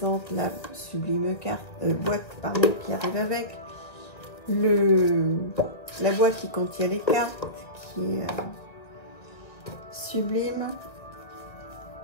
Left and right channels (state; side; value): late; right; 1.8 ms